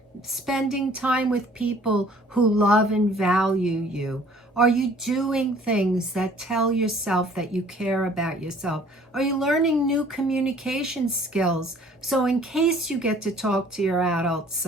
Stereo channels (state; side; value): normal; both; correlation 0.55